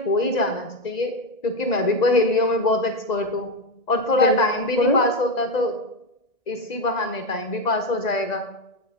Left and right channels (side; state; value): right; late; 1.9 ms